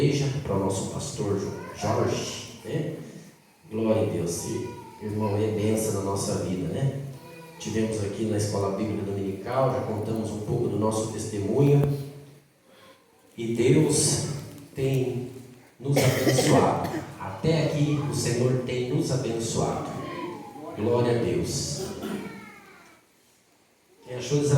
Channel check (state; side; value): identical; both; correlation 1.00